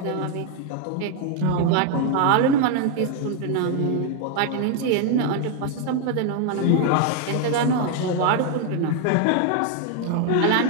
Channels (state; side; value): different; both; correlation 0.00